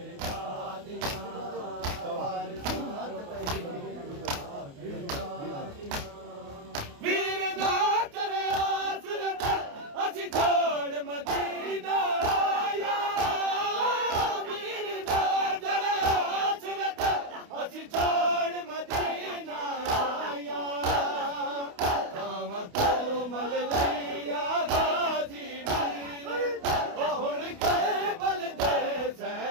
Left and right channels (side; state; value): left; late; 28 ms